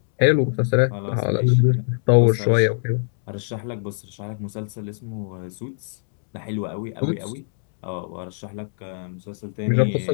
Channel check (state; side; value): silent; right; digital silence